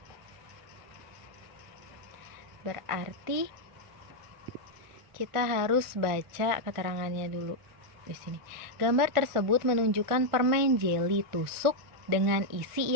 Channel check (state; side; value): late; left; 1.5 ms